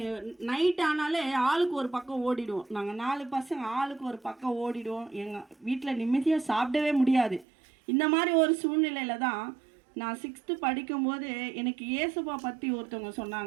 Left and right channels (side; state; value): left; drops out; at 7.5 s